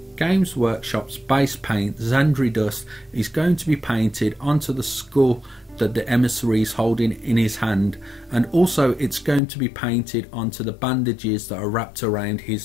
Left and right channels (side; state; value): right; drops out; at 9.4 s